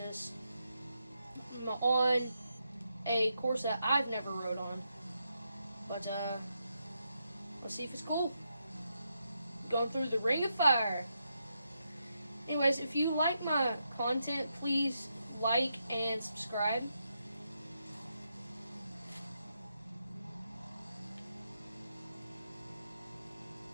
on a course that I've never rode on. But let's see if it's cool. Going through the ring of fire. Anyways, if you like my content, please like and subscribe.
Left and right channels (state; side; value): inverted; both; correlation -0.83